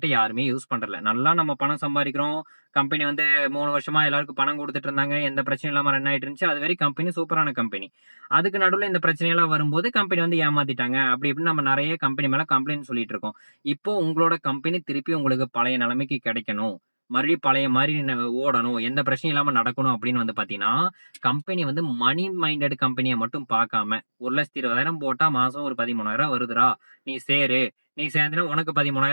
யாருமே யூஸ் பண்றதில்ல. நல்லா நம்ம பணம் சம்பாரிக்கிறோம். கம்பெனி வந்து 3 வருஷமா எல்லாருக்கும் பணம் குடுத்துட்டு இருந்தாங்க. எந்த பிரச்சனையும் இல்லாம ரன் ஆயிட்டு இருந்துச்சு. அதுவரை கம்பெனி சூப்பரான கம்பெனி. அதுக்கு நடுவுல இந்த பிரச்சனையெல்லாம் வரும்போது கம்பெனி வந்து ஏமாத்திட்டாங்க. அப்படி இப்படின்னு நம்ம நெறைய கம்பெனி மேல கம்ப்ளைண்ட் சொல்லிட்டு இருக்கோம். இப்போ உங்களோட கம்பெனி திருப்பி உங்களுக்கு பழைய நிலைமைக்கு கிடைக்கணும். மறுபடியும் பழைய மாதிரி ஓடணும், எந்த பிரச்சனையும் இல்லாம நடக்கணும் அப்படின்னு வந்து பாத்தீங்கன்னா, கம்பெனி வந்து மணி மைண்டட் கம்பெனியை மட்டும் பார்க்காம 1,20,000 போட்டா மாசம் ஒரு 13,000 வருதுடா, நீ சேரு, நீ சேர்ந்தனா உனக்கு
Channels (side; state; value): both; inverted; correlation -1.00